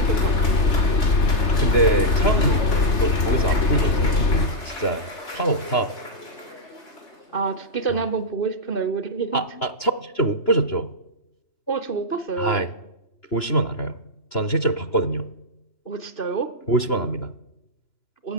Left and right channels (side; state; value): right; late; 2.9 ms